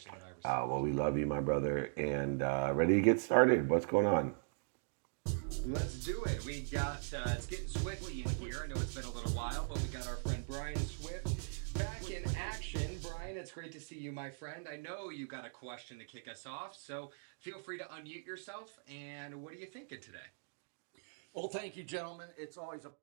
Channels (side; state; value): left; silent; digital silence